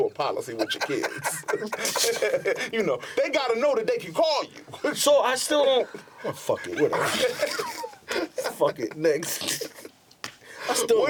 policy with your kids. They got to know that they can call you." So I still don't. Oh, fuck it, whatever. Fuck it, next.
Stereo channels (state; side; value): identical; both; correlation 1.00